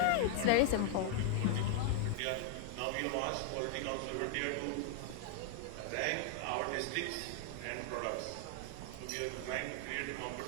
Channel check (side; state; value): both; different; correlation 0.00